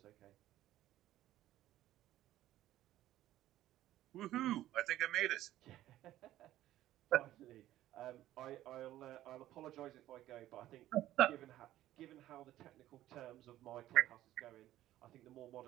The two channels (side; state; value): left; quieter; 14.0 dB